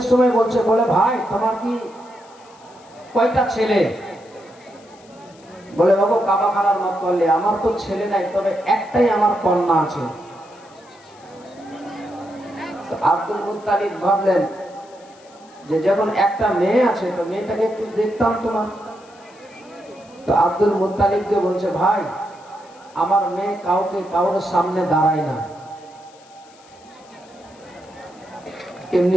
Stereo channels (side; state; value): left; noise; hiss, 27 dB below the sound